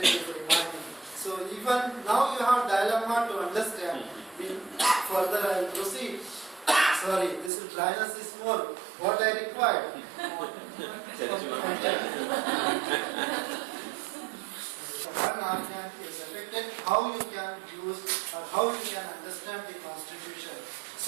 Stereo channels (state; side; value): drops out; left; at 7.5 s